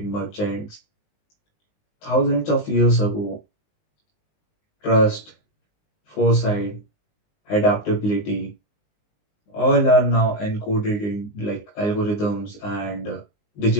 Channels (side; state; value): right; late; 19 ms